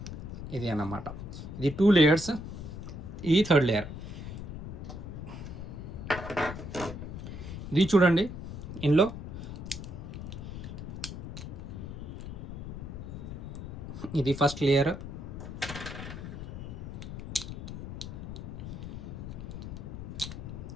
ఇది అన్నమాట, ఇది 2 లేయర్స్, ఇది 3rd లేయర్. ఇది చూడండి, ఇందులో ఇది first layer,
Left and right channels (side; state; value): left; noise; rumble, 8 dB below the sound